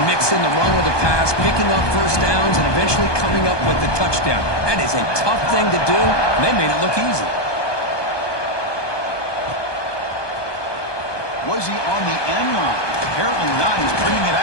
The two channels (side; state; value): right; late; 1.2 ms